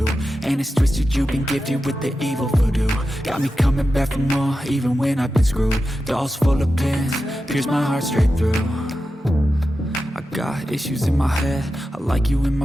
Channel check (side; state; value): both; normal; correlation 0.91